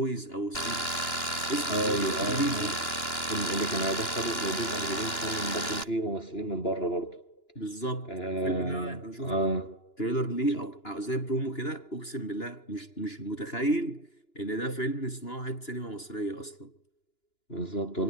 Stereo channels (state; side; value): late; right; 2.9 ms